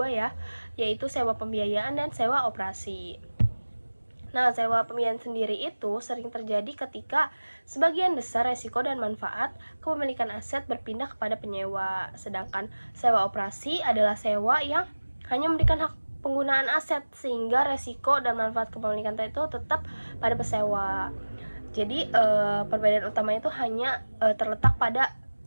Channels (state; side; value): inverted; both; correlation -1.00